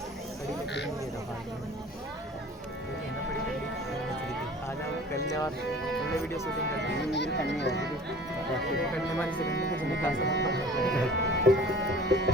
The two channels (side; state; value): both; normal; correlation 0.45